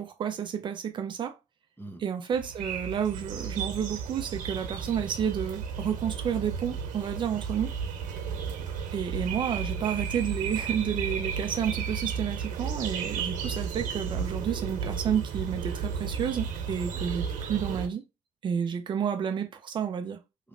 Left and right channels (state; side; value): quieter; left; 7.3 dB